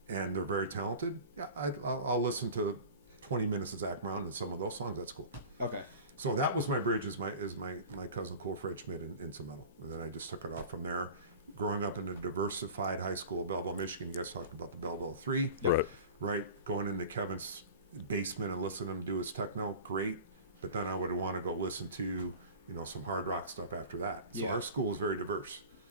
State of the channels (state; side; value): inverted; both; correlation -0.37